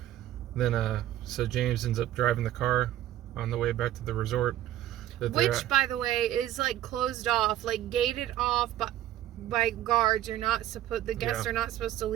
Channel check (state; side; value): quieter; left; 12.9 dB